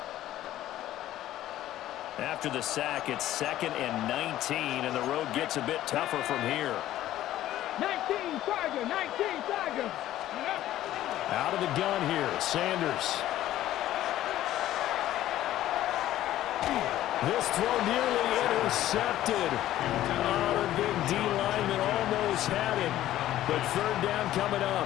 After the sack, it's 2nd and 19, and the road gets a bit tougher from here. 19 Tiger, 19 Tiger. Out of the gun here, Sanders. This throw nearly intercepted. Oh, the big D lineman almost had it, but 3rd down coming up.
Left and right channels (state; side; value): quieter; right; 13.6 dB